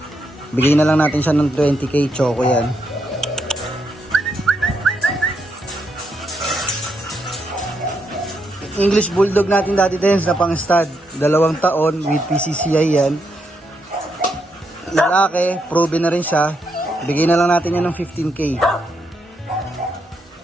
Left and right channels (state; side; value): normal; both; correlation 0.80